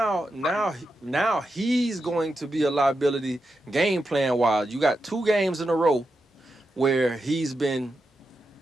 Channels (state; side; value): normal; both; correlation 0.87